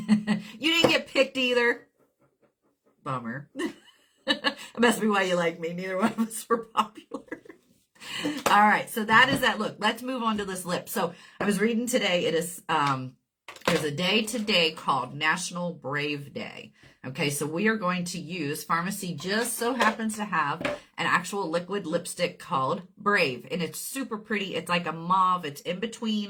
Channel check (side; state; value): both; identical; correlation 1.00